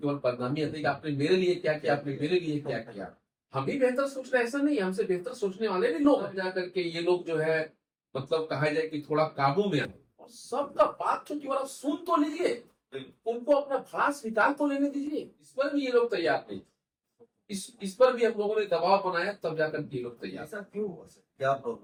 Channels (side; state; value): both; identical; correlation 1.00